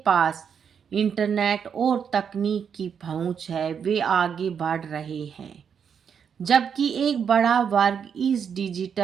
पास इंटरनेट और तकनीक की पहुंच है वे आगे बढ़ रहे हैं, जबकि एक बड़ा वर्ग इस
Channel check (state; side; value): quieter; left; 7.3 dB